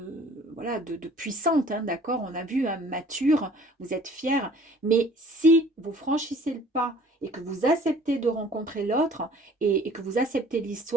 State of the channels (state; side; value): normal; both; correlation 0.52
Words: voilà, de puissante, hein, d'accord, on a vu, hein, mature, vous êtes fière, mais si vous franchissez le pas et que vous acceptez de rencontrer l'autre et que vous acceptez